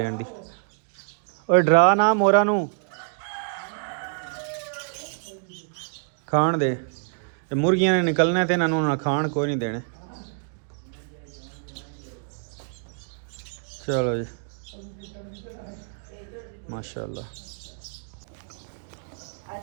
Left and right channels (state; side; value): silent; left; digital silence